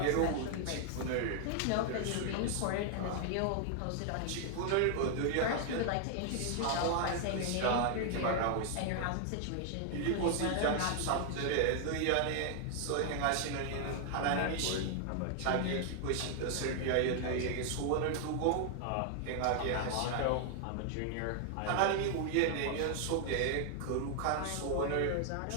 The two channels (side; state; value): both; different; correlation 0.00